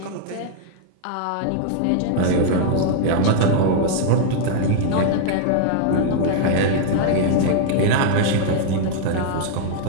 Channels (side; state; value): both; different; correlation 0.00